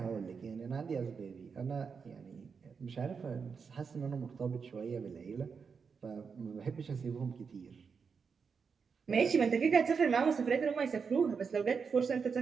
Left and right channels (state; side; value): quieter; left; 5.8 dB